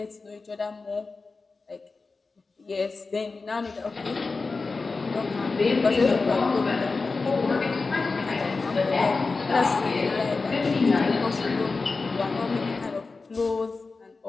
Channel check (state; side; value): quieter; right; 4.0 dB